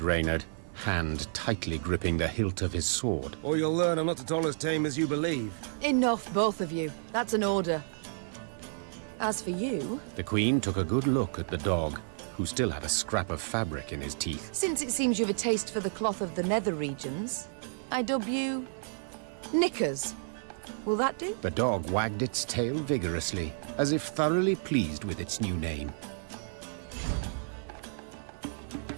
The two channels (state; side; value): silent; left; digital silence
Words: Reynard, hand tightly gripping the hilt of his sword. Or you'll learn I'm not at all as tame as you believe. Enough, both of you. That's an order. As for you... The Queen took a good look at the dog, who still had a scrap of fabric in his teeth. Since it seems you've a taste for the cloth of the nether regions, I dub you... Knickers. Will that do? The dog wagged its tail vigorously, as if thoroughly pleased with its new name.